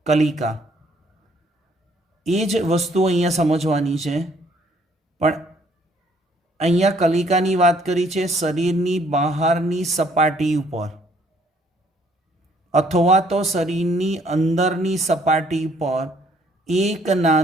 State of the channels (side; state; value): both; normal; correlation 0.63